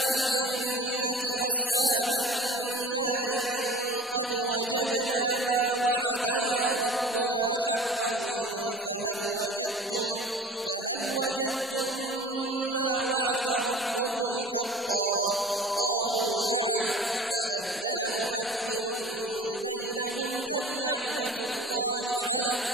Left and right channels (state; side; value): normal; both; correlation 0.41